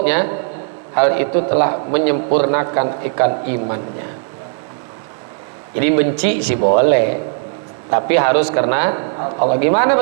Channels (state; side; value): silent; left; digital silence